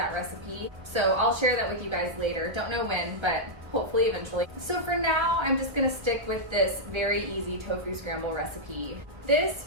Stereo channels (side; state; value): left; late; 1.1 ms